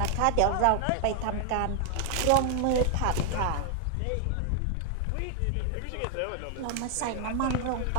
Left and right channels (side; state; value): both; different; correlation 0.00